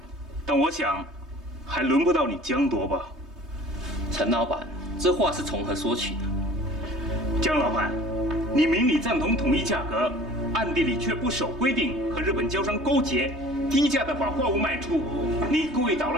但我想，还轮不到你江夺吧？陈老板，这话是从何说起的？江老板，你明里赞同统一价格，暗地里却不守规定，和日本交商勾结，低价的把货物卖出，你故意捣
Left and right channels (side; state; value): left; late; 3.2 ms